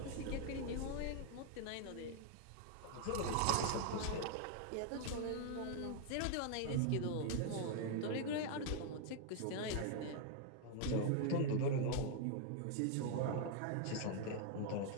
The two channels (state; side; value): different; both; correlation 0.00